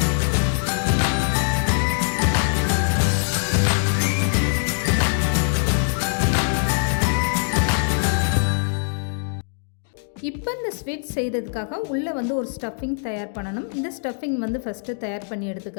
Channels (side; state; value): right; silent; 64 dB below the other